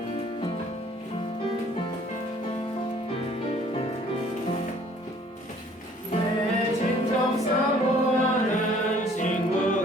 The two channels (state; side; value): normal; both; correlation 0.56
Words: 내 진정 사모하는